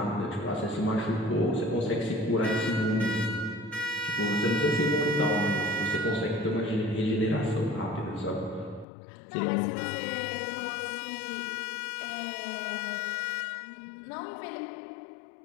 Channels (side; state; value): right; drops out; at 8.8 s